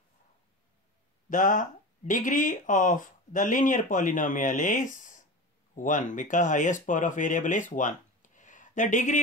The degree of the linear polynomial is 1 because highest power of variable is 1. The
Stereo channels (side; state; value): both; normal; correlation 0.29